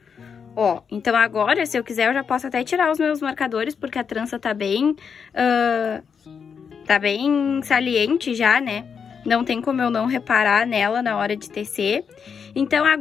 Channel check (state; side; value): quieter; right; 6.5 dB